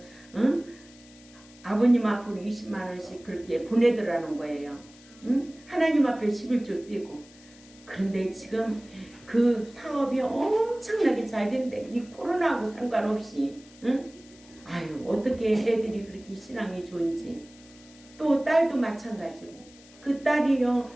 아버님 앞으로 20만원씩 그렇게 보내더라는 거예요. 하나님 하나님 앞에 11조 띄고. 그런데 지금 그 사업이 엄청나게 잘 된대. 이 코로나하고 상관없이. 응? 아유, 어떻게 애들이 그렇게 신앙이 좋은지. 또 딸도 마찬가지고. 그 딸이요,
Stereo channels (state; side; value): noise; left; hiss, 24 dB below the sound